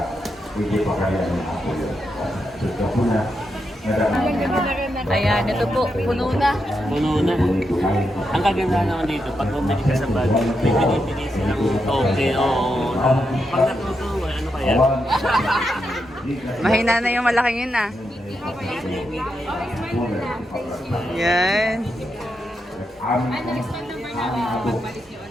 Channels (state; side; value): normal; both; correlation 0.84